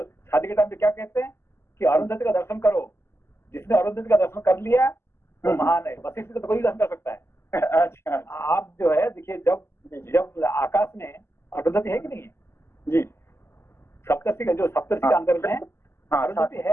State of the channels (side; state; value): right; late; 0.12 ms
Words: शादी के टाइम पे क्या कहते हैं कि अरुंधति का दर्शन करो, जिसने अरुंधति का दर्शन कर लिया वो महान है, वशिष्ठ का तो कोई दर्शन कर सकता है। अच्छा, आप जो है देखिए, जब आकाश में अरुंधति है कि नहीं है जी, सप्तर्षि का जो सप्तर्षि का अंदर में अरुंधति